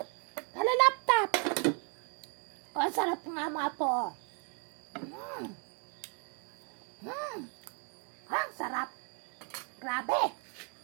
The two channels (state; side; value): quieter; left; 39.9 dB